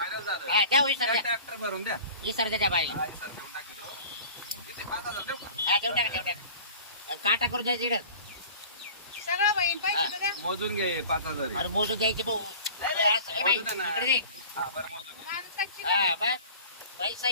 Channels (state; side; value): inverted; both; correlation -0.42